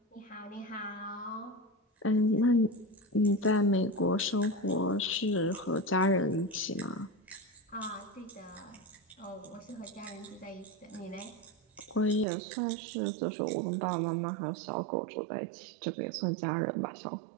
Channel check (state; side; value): drops out; left; at 12.2 s